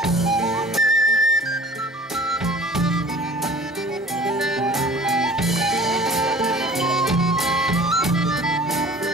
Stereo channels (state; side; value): normal; both; correlation 0.47